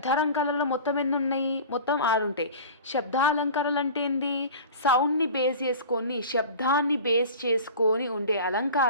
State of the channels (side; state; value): both; inverted; correlation -0.37